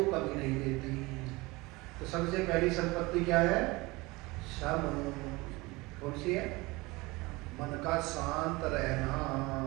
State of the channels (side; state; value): left; quieter; 22.8 dB